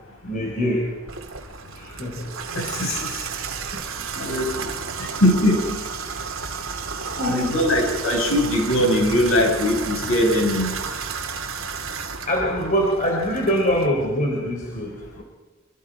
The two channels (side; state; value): both; normal; correlation 0.32